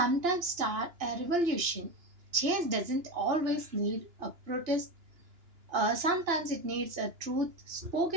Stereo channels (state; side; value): late; left; 2.9 ms